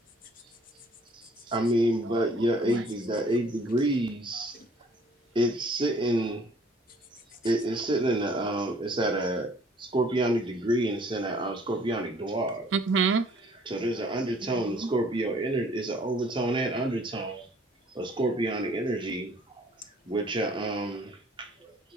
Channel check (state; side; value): normal; both; correlation 0.57